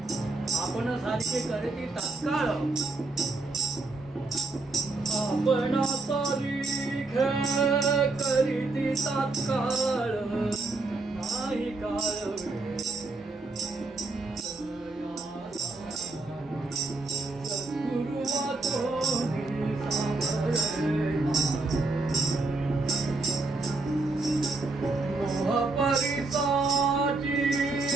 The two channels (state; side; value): quieter; left; 3.4 dB